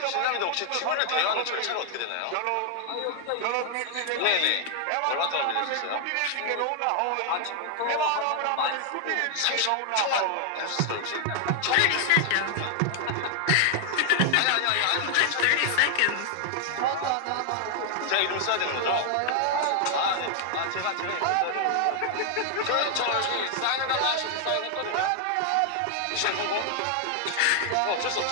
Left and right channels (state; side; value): different; both; correlation 0.00